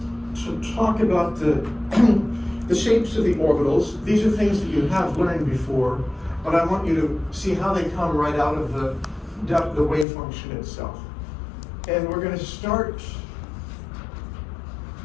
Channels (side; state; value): right; drops out; at 10.1 s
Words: talk about the shapes of the orbitals. These are things that you have learned before, but I want you to see how they come right out of the wave function itself. And we're going to start